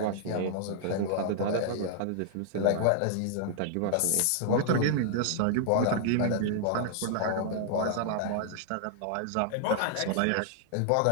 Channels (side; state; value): both; different; correlation -0.01